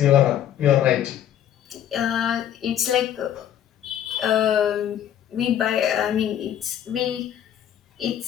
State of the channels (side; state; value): right; quieter; 10.4 dB